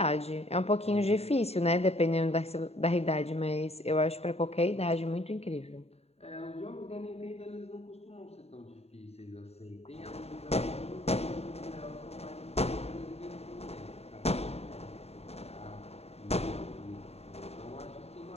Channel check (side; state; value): right; late; 0.30 ms